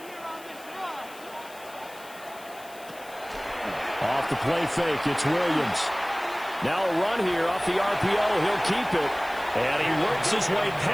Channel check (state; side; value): noise; left; hiss, 20 dB below the sound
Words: Off the play fake, it's Williams. Now a run here off the RPO. He'll keep it. And he works his way